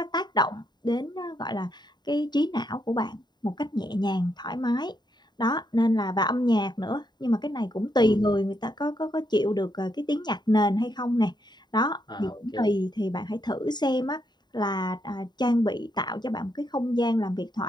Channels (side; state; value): right; late; 0.21 ms